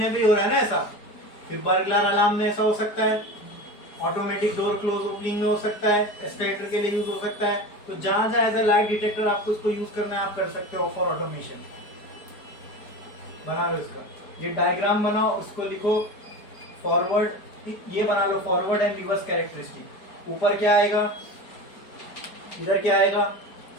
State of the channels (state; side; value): late; right; 4.8 ms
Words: पे हो रहा है ना ऐसा। फिर बर्गलर अलार्म में ऐसा हो सकता है, ऑटोमेटिक डोर क्लोज ओपनिंग में हो सकता है, एस्केलेटर के लिए यूज हो सकता है। तो जहां जहां एज ए लाइट डिटेक्टर आपको इसको यूज करना है आप कर सकते हो फॉर ऑटोमेशन। बना लो इसका, ये डायग्राम बनाओ, उसको लिखो फॉरवर्ड, ये बना लो फॉरवर्ड एंड रिवर्स कैरेक्टरिस्टिक। ऊपर क्या आएगा? इधर क्या आएगा?